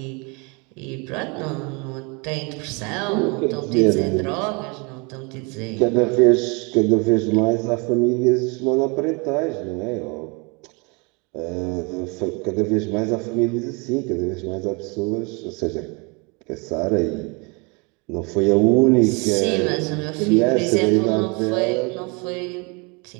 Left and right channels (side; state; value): left; quieter; 30.5 dB